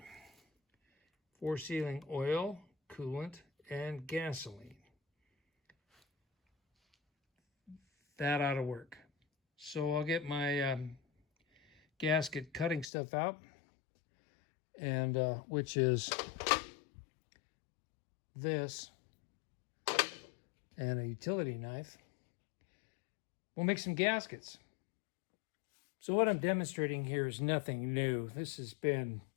for sealing oil, coolant, and gasoline. That ought to work. So I'll get my gasket cutting stuff out, and which is this and a utility knife. We'll make some gaskets. So what I'm demonstrating here is nothing new. This has been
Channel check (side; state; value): right; drops out; at 12.9 s